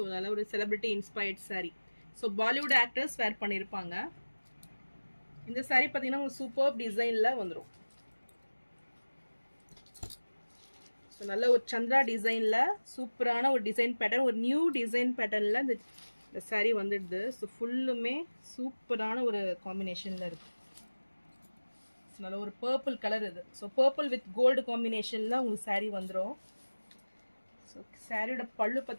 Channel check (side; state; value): both; inverted; correlation -1.00